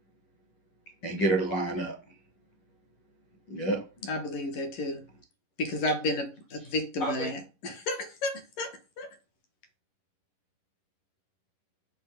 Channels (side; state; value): right; late; 11 ms